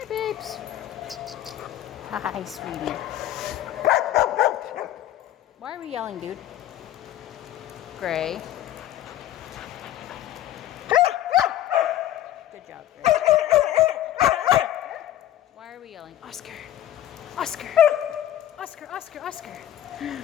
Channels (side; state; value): right; quieter; 12.4 dB